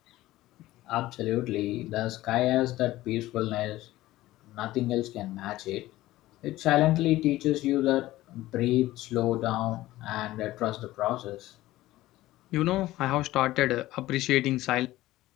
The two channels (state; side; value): quieter; right; 16.5 dB